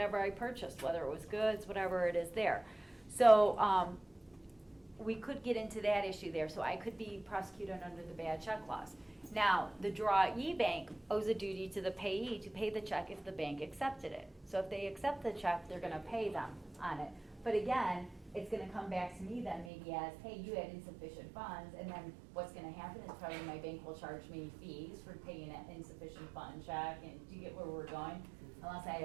I purchased, whether it was goods, whatever it is there. So we could get into that issue there. So I could be prosecuted under the bad check laws. Now, the drawee bank owes a duty to the payee to pay the check if the bank accepted it. So if they accept the check, they're going to pay them on it. But again, it's going to come back to me then maybe as, hey, you had insufficient funds, and then what's going to happen is probably my bank will charge me fees for paying an insufficient fund check, and do you get where we're going? Unless I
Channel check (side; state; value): left; drops out; at 19.7 s